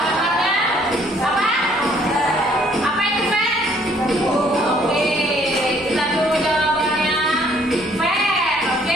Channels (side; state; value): both; normal; correlation 0.62